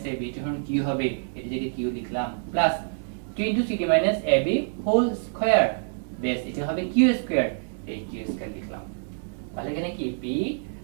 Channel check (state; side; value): silent; left; digital silence